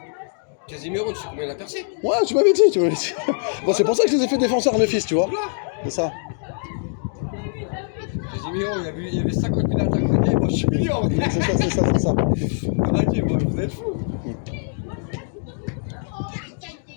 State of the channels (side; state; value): right; silent; 64 dB below the other